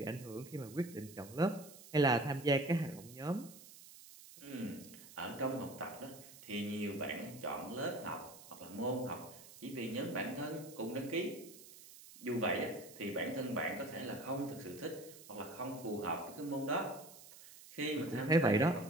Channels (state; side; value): noise; right; hiss, 18 dB below the sound